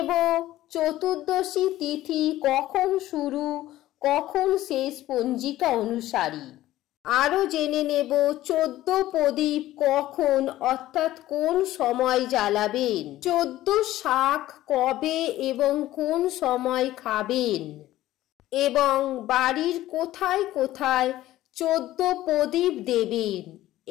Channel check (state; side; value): quieter; right; 15.0 dB